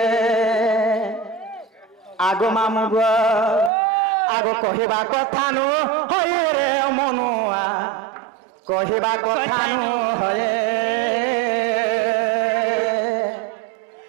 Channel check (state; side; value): drops out; left; at 3.7 s